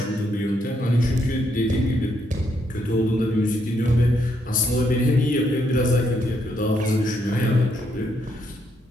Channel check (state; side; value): normal; both; correlation 0.76